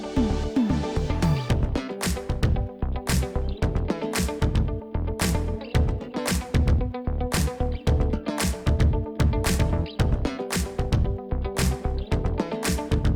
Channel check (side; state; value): both; identical; correlation 1.00